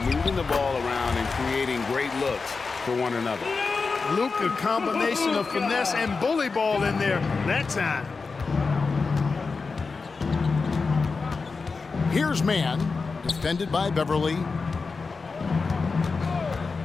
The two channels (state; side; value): quieter; right; 4.5 dB